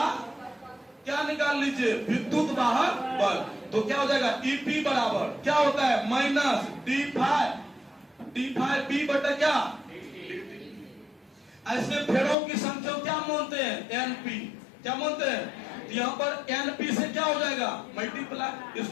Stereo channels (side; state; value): right; drops out; at 12.4 s